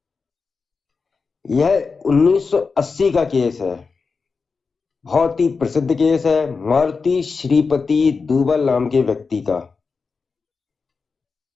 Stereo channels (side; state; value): right; quieter; 4.8 dB